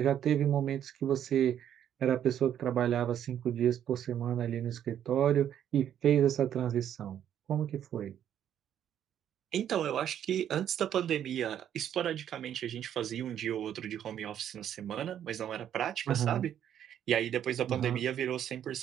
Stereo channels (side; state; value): left; quieter; 10.0 dB